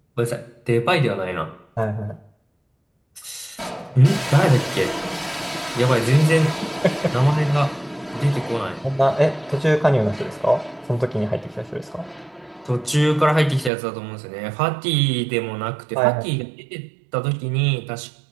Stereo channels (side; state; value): left; drops out; at 13.7 s